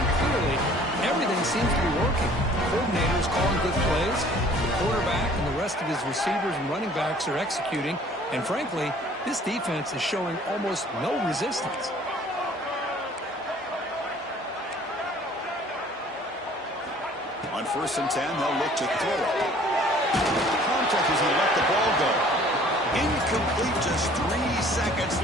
clearly everything seems to be working. The coordinator is calling good plays. The quarterback and the rest of his receivers and running backs are executing. And frankly, this defense is showing almost no resistance. On 1st and 10, they'll look to throw it. Contact as he let the ball go. Incomplete, just 3 seconds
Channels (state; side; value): normal; both; correlation 0.53